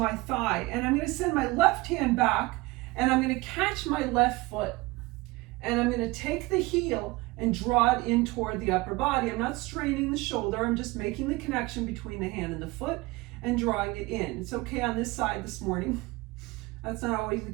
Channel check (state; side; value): quieter; left; 22.1 dB